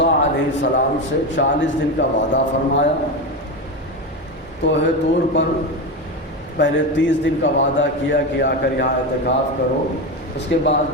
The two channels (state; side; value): normal; both; correlation 0.17